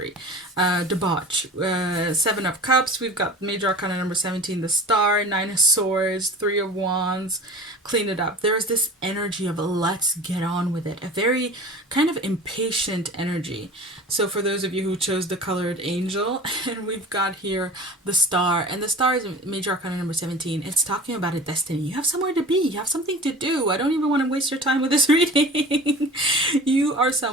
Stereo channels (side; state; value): both; normal; correlation 0.39